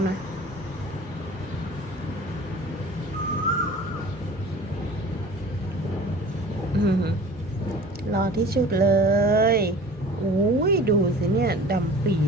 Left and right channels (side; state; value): both; normal; correlation 0.43